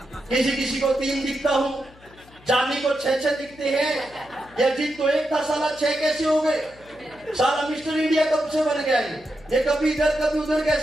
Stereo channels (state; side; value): noise; left; hum, 25 dB below the sound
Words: किसी को 3 दिखता हूँ, जानी को 6 दिखते हैं। या जीत तो एक था, साला 6 कैसे हो गए? साला मिस्टर इंडिया कब से बन गया ये कभी इधर कभी उधर